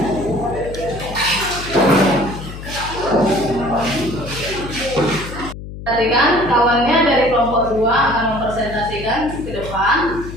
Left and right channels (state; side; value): noise; left; hum, 11 dB below the sound